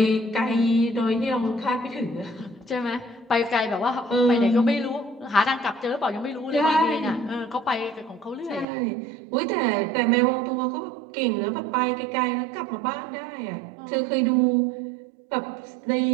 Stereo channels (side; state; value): left; drops out; at 8.7 s